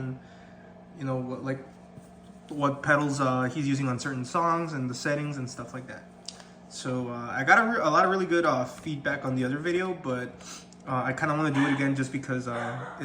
you know what pedals he's using on certain songs and the settings and stuff like that. So I got a lot of really good feedback on the other video, but I kind of want to do it again just because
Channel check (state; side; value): identical; both; correlation 1.00